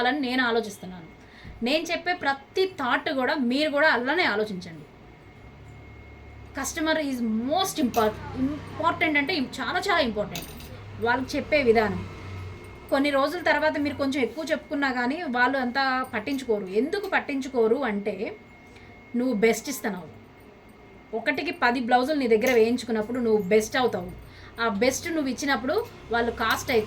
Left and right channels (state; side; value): identical; both; correlation 1.00